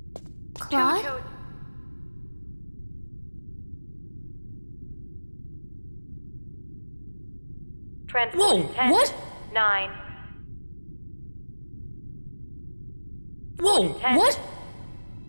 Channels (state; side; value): inverted; both; correlation -1.00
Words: Claude? Transport 10, what? 9. Whoa, 10. what?